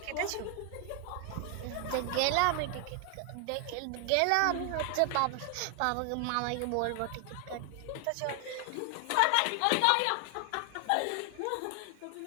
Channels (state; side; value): different; both; correlation 0.00